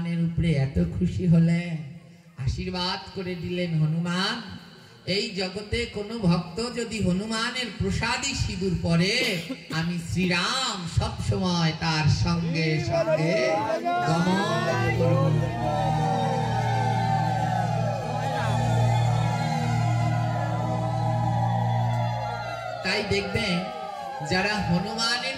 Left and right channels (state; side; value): identical; both; correlation 1.00